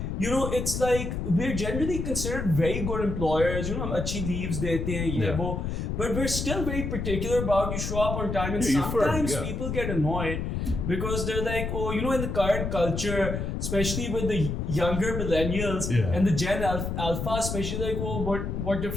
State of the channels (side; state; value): left; noise; rumble, 3 dB below the sound